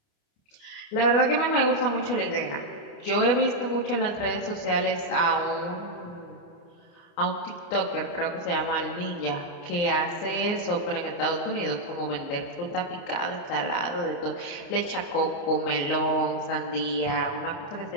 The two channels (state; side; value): late; right; 29 ms